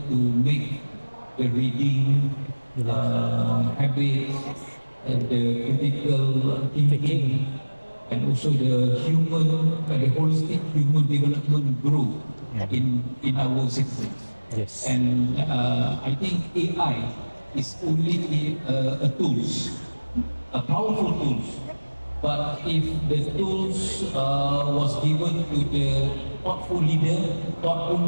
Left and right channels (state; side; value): inverted; both; correlation -1.00